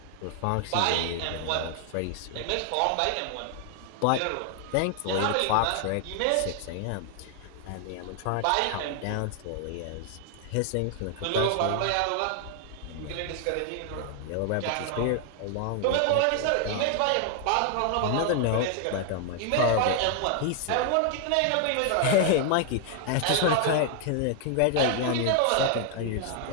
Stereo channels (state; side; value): different; both; correlation 0.00